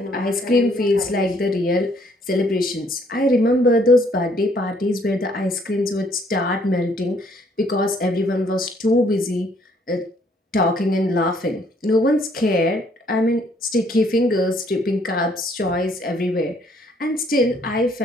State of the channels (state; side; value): normal; both; correlation 0.65